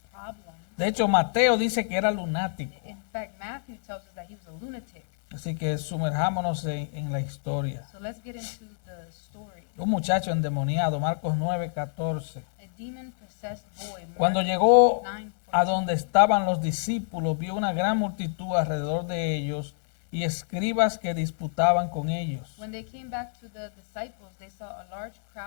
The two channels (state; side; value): silent; right; 60 dB below the other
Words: problems. De hecho, Mateo dice que era lunático. In fact, Matthew tells us that he was a lunatic. Así que sumerjámonos en la historia. So let's get into the story. Un muchacho endemoniado, Marcos 9:14. A demon-possessed boy, Cuando Mark llegó 9:14. a donde estaban los discípulos, vio una gran multitud alrededor de ellos y escribas que disputaban con ellos. When they came back to the disciples, they saw a large